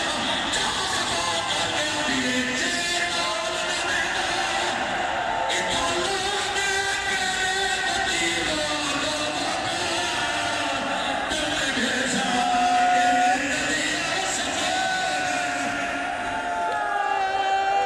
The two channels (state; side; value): identical; both; correlation 1.00